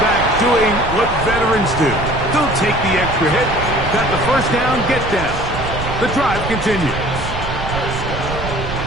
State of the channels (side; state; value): right; noise; rumble, 7 dB below the sound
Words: doing what veterans do. Don't take the extra hit. Got the first down, get down. The drive continues.